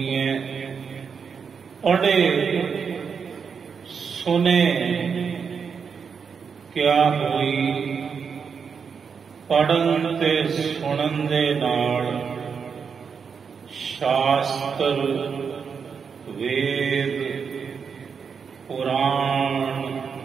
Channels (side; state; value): left; quieter; 6.2 dB